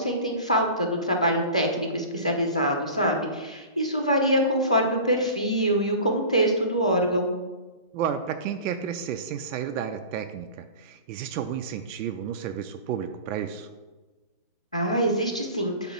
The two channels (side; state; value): both; inverted; correlation -0.37